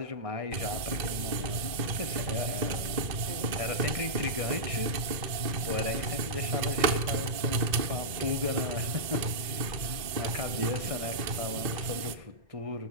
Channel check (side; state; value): left; late; 2.5 ms